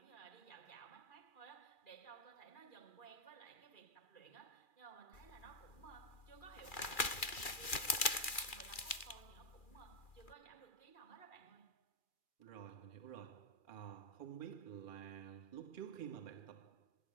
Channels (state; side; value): late; right; 2.4 ms